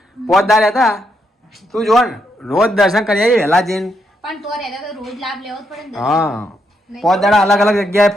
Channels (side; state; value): both; normal; correlation 0.79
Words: પોતદાર હતા તું જો ને રોજ દર્શન કરી આવીએ વહેલા જઈને પણ તો રહેતા તો રોજ લાભ લેવો જ પડે ને હા પોત દાડા અલગ અલગ જગ્યાએ